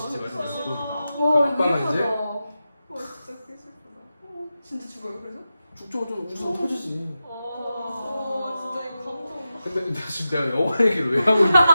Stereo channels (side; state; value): both; inverted; correlation -0.92